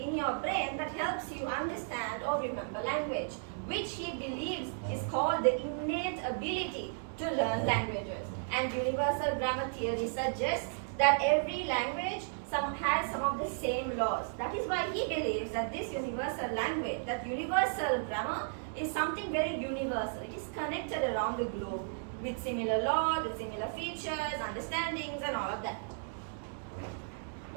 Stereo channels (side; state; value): left; silent; digital silence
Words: your brain that helps you understand or remember language, which he believes is called the innate ability to learn languages. And universal grammar theory suggests that every language has some of the same laws. That is why he believes that this universal language, that universal grammar, is something very universal. It is connected around the globe with similar laws, with similar features, understandings and all of that.